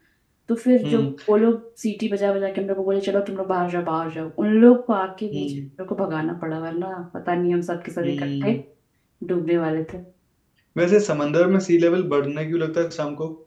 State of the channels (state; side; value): identical; both; correlation 1.00